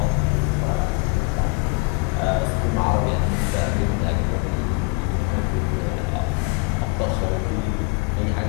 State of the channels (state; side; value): quieter; right; 29.8 dB